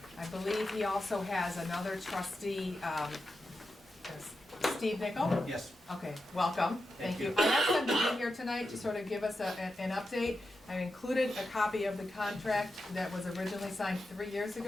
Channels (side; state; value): both; normal; correlation 0.89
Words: I believe he also has another trustee, Steve Nickel? Yes. Okay, welcome, thank you. I asked them to be here tonight to sort of give us an update. I included a copy of the contract that was originally signed 3 years